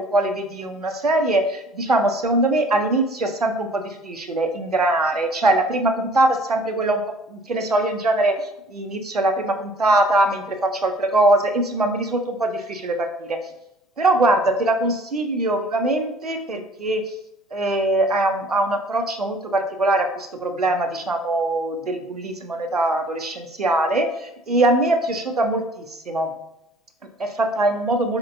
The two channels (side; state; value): both; normal; correlation 0.53